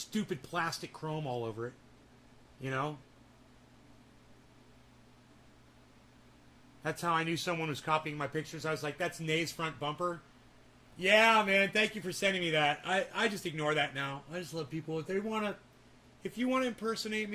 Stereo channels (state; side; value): identical; both; correlation 1.00